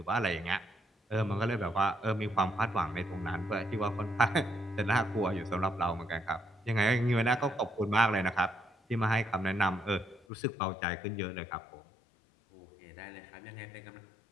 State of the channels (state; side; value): drops out; right; at 10.2 s